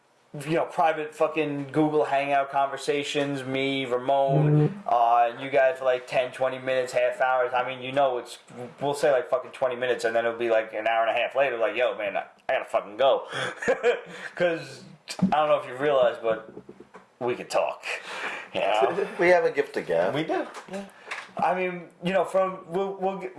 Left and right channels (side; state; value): both; identical; correlation 1.00